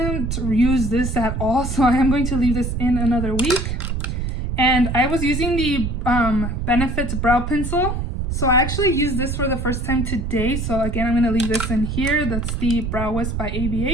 use this at all, so I am going to leave this in another week. And I was using the Benefit Brow Pencil. So I actually used this for the first time today. So again, I'm going to leave this in here. That's the Brow Wisp by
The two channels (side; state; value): right; noise; rumble, 2 dB below the sound